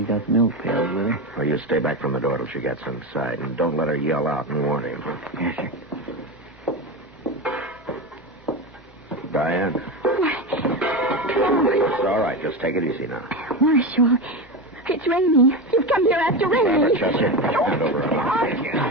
got the milk pails with her. Well, you stay back from the door till she gets inside, and don't let her yell out and warn him. Yes, sir. Diane? It's all right. Just take it easy now. Marshal, it's Ramey. You've come here after Ramey. Chester, hand over.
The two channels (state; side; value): normal; both; correlation 0.19